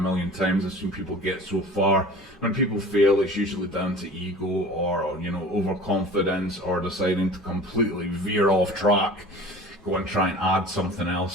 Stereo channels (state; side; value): normal; both; correlation 0.41